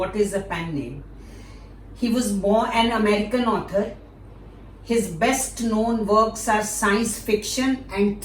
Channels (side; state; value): both; identical; correlation 1.00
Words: is a pen name. He was born an American author. His best known works are science fiction and